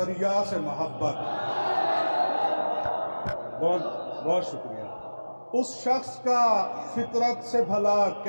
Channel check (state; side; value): inverted; both; correlation -1.00